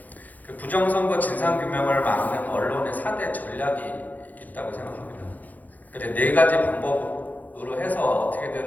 그 부정선거 진상규명을 막는 언론의 4대 전략이 있다고 생각합니다. 그러니까 네 가지 방법으로 해서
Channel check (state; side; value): late; right; 0.081 ms